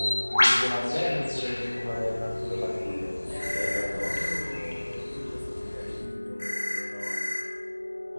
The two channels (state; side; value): inverted; both; correlation -1.00